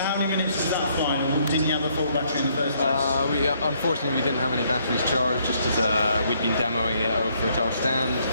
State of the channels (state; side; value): inverted; both; correlation -0.69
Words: how many minutes was that flying? Didn't you have a full battery in the first place? Unfortunately, we didn't have any batteries charged, just as we'd been demoing it over at our stand.